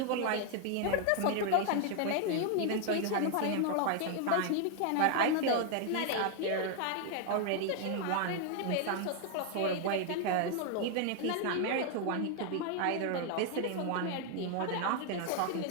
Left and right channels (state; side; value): different; both; correlation 0.00